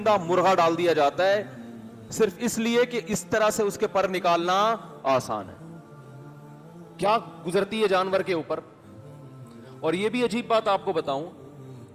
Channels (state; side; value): identical; both; correlation 1.00